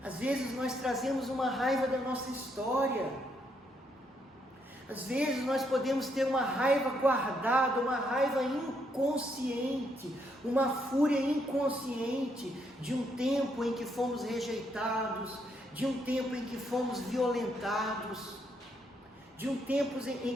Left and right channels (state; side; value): normal; both; correlation 0.75